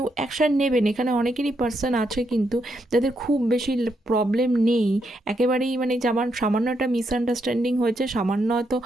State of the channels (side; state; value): both; normal; correlation 0.79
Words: অ্যাকশান নেবেন। এখানে অনেকেরই পার্সন আছে কিন্তু যাদের খুব বেশি প্রবলেম নেই, একেবারেই মানে যেমন সামান্য একটা মিসআন্ডারস্ট্যান্ডিং হয়েছে, সামান্য হয়তো